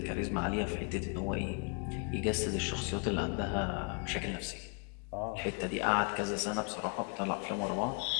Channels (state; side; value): quieter; right; 38.0 dB